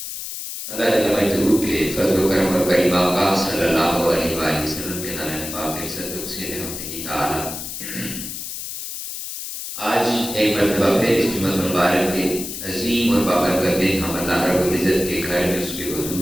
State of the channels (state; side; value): noise; left; hiss, 7 dB below the sound